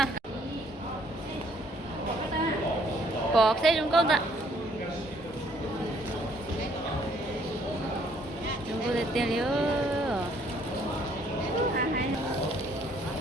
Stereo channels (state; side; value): normal; both; correlation 0.64